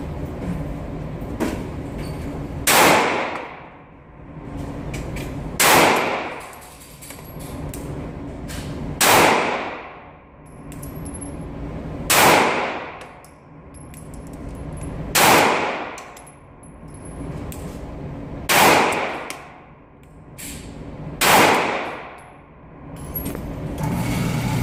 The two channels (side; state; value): both; identical; correlation 1.00